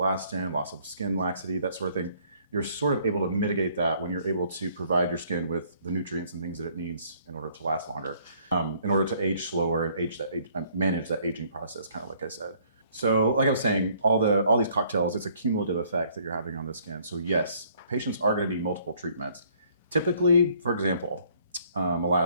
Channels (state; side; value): inverted; both; correlation -0.62